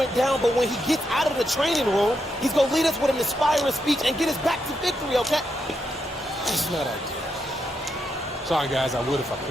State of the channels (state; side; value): normal; both; correlation 0.82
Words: down, but when he gets out of the training room, he's going to lead us with an inspiring speech and get us back to victory, okay? That's not ideal. Sorry, guys, I would if I